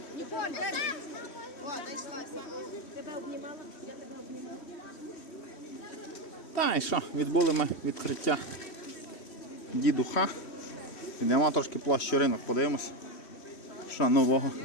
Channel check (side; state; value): right; late; 3.1 ms